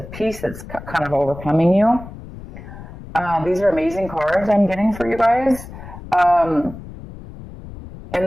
peace that's kind of overcoming you. These are amazing cards I'm getting for you guys. And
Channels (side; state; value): left; noise; rumble, 14 dB below the sound